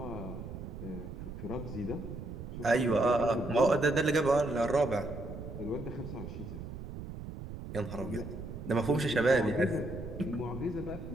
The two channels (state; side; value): noise; right; rumble, 9 dB below the sound